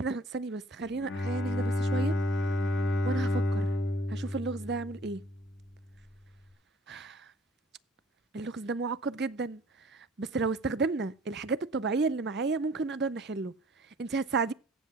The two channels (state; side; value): normal; both; correlation 0.55